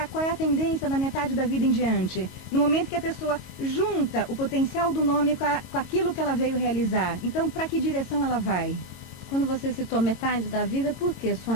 qual é a tendência da metade da vida em diante. No momento que a pessoa junta o potencial do nome com aquilo que ela veio realizar. Então, para que direção ela vai? Quando você citou metade da vida, por quê,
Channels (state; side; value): late; right; 22 ms